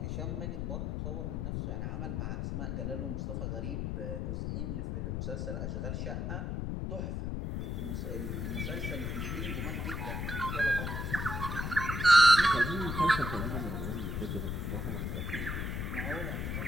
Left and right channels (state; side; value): noise; left; rumble, 2 dB below the sound